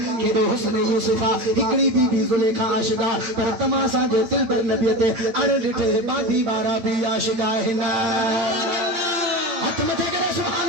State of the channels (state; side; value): late; left; 8.8 ms